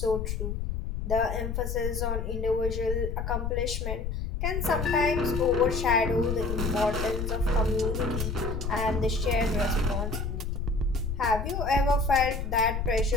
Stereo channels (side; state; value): left; noise; rumble, 3 dB below the sound